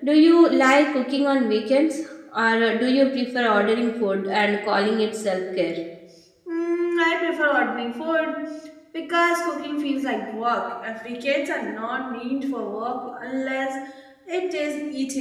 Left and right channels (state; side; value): identical; both; correlation 1.00